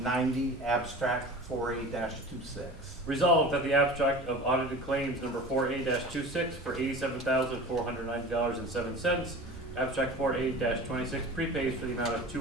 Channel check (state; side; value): normal; both; correlation 0.36